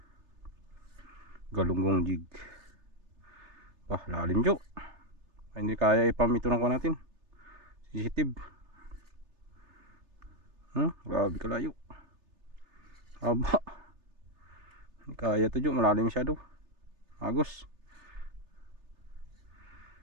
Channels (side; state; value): left; late; 3.3 ms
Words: Galunggong jig. Lalim jo. Hindi kaya ipam ito ng ko natin. Sensitive. Grabe kalayo. Haba. Hindi kaya ito jo, malalim masyado. Agos.